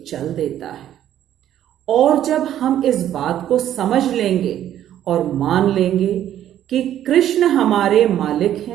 चल देता है। और जब हम इस बात को समझ लेंगे और मान लेंगे कि कृष्ण हमारे मालिक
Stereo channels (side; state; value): left; quieter; 11.4 dB